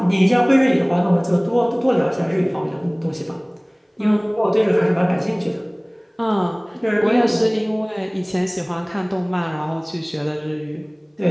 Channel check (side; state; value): both; identical; correlation 1.00